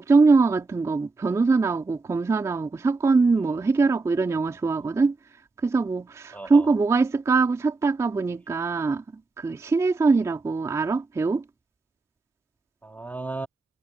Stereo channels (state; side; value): quieter; left; 3.7 dB